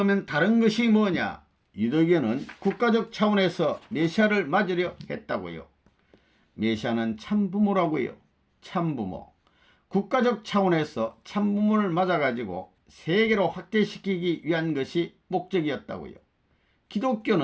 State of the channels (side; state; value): both; identical; correlation 1.00